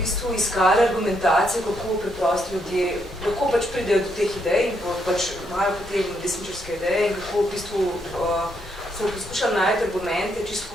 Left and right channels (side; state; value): both; normal; correlation 0.76